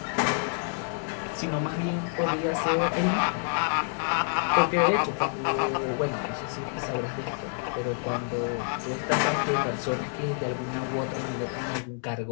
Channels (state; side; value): silent; right; 59 dB below the other